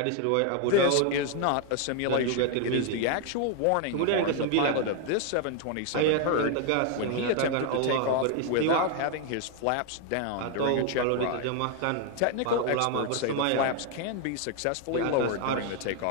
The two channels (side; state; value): both; different; correlation 0.00